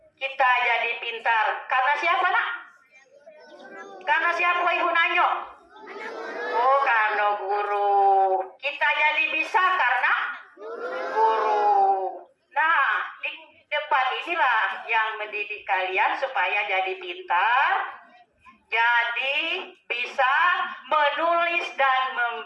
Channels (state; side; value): identical; both; correlation 1.00